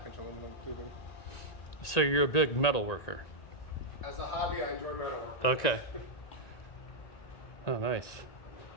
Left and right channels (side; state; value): right; late; 1.9 ms